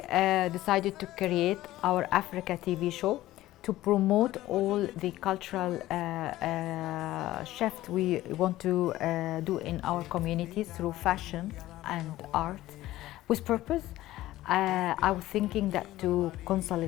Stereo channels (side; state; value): right; quieter; 15.7 dB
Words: decided to create our Africa TV show to promote all the cultural shift we want to do in our communities through fashion and art with purpose, I was thinking that to